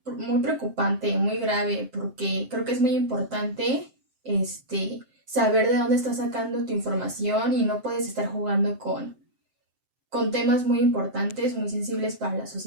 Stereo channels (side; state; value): left; late; 7.7 ms